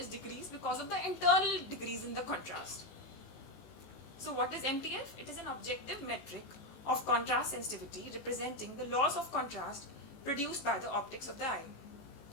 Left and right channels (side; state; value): right; late; 19 ms